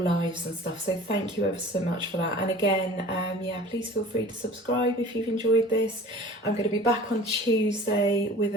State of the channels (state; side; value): normal; both; correlation 0.44